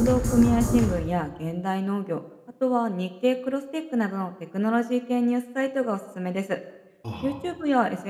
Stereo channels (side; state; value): both; identical; correlation 1.00